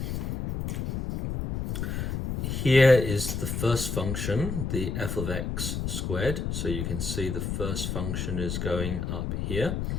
Here is the first function, the f of x squared. So you can see the first function is going up here.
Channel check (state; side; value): noise; left; rumble, 2 dB below the sound